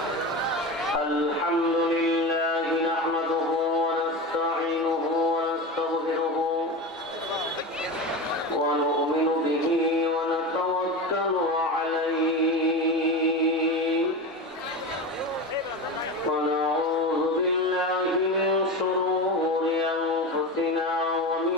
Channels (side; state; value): both; normal; correlation 0.24